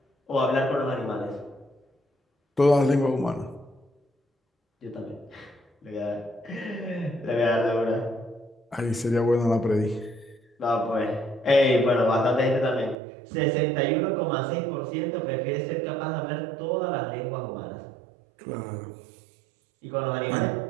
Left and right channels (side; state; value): left; drops out; at 13.0 s